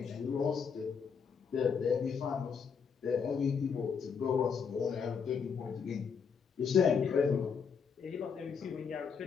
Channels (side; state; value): right; quieter; 6.3 dB